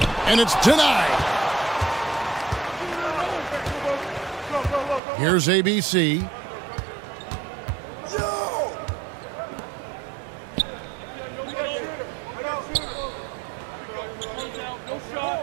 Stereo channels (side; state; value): left; drops out; at 5.0 s